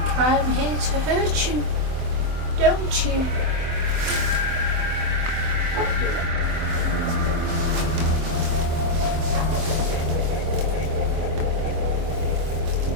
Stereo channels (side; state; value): left; late; 24 ms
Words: I'm here to hurt you, don't you?